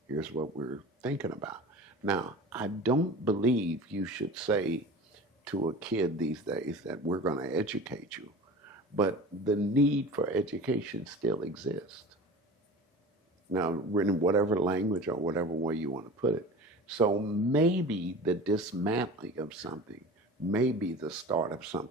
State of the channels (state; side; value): normal; both; correlation 0.36